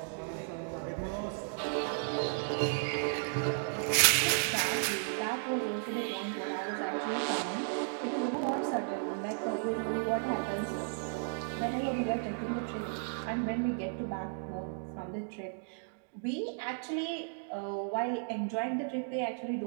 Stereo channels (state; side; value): silent; left; digital silence